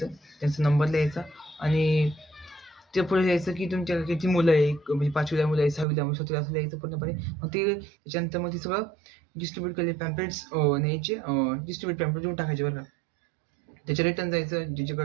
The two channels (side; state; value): left; drops out; at 5.9 s